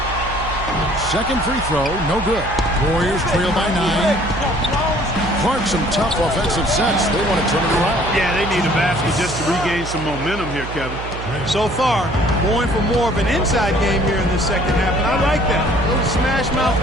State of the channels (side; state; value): right; noise; hum, 10 dB below the sound